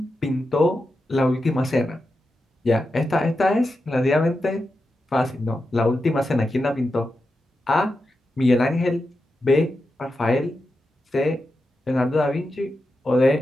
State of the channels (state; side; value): normal; both; correlation 0.89